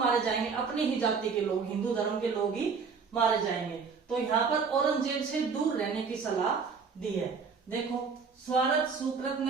जाएंगे? अपनी ही जाति के लोग, हिंदू धर्म के लोग ही मारे जाएंगे। तो यहाँ पर औरंगजेब से दूर रहने की सलाह दी है। देखो, स्वार्थ सुकृत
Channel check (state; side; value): quieter; left; 5.4 dB